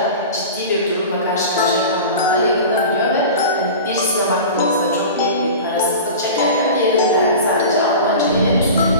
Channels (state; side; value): inverted; both; correlation -0.33